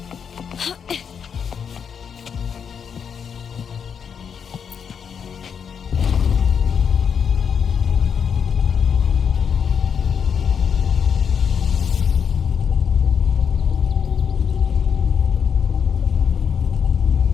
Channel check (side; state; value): right; quieter; 7.1 dB